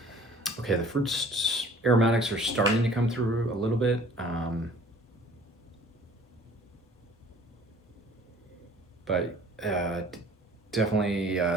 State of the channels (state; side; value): normal; both; correlation 0.50